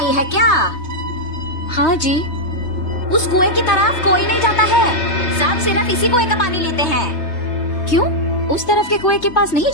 है क्या? हाँ जी। उस कुएं की तरफ कोई नहीं जाता है, सब सिर्फ इसी कुएं का पानी लेते हैं। क्यों, उस तरफ के कुएं के पास नहीं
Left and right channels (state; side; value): late; right; 3.3 ms